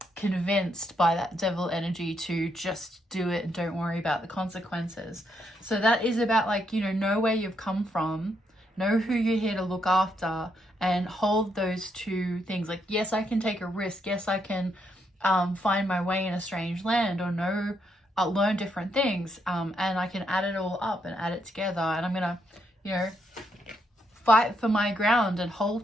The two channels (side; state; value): both; normal; correlation 0.77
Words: convinced by that devil energy to just do it and don't worry about the consequences. So that is about know where you've come from, know who you're here to look after, and hold those two things. Yes, I can take a risk. Yes, I can find my way in a strange land, or learn different things. And I can add it all up and add it together. And I'm going to, fight for my ground and hold